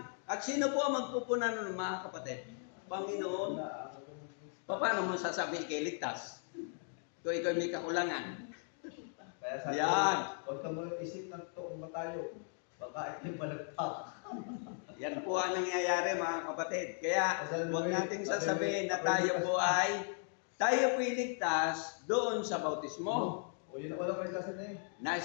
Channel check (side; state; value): right; silent; 53 dB below the other